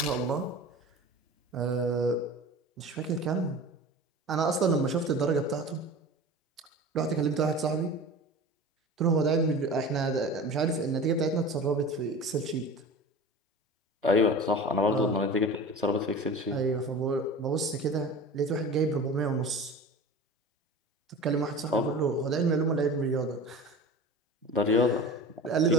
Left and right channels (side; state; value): both; normal; correlation 0.36